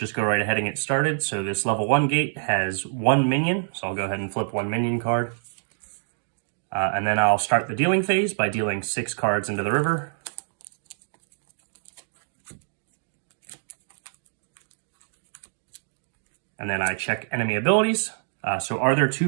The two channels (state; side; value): silent; left; digital silence